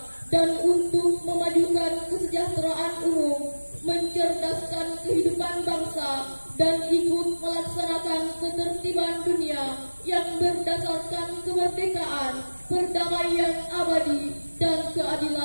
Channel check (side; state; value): both; inverted; correlation -1.00